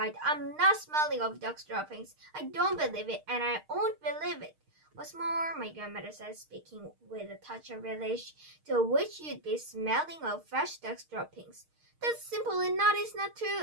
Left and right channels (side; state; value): left; late; 6.5 ms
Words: I'm not smelling of dog's droppings. I don't believe it, and I won't believe it. What's more, my grandmother said, speaking with a touch of relish, to which you'd be smelling of fresh dog's droppings. That simply